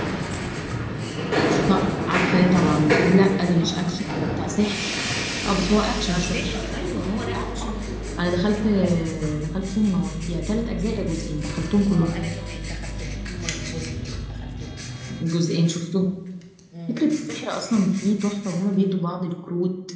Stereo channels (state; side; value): identical; both; correlation 1.00